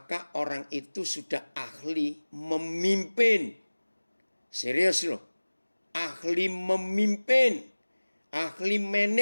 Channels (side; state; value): both; inverted; correlation -1.00